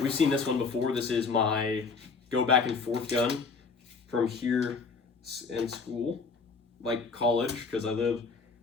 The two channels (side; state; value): right; quieter; 4.7 dB